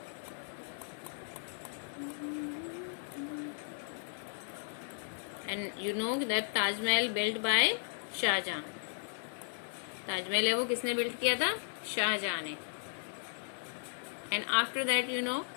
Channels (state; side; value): silent; right; digital silence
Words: And you know that Taj Mahal built by Shah Jahan. Taj Mahal है वो किसने बिल्ट किया था? शाहजहां ने. And after that you know